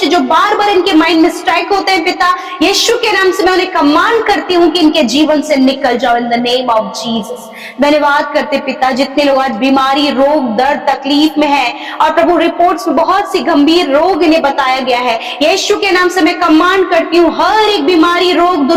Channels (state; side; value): identical; both; correlation 1.00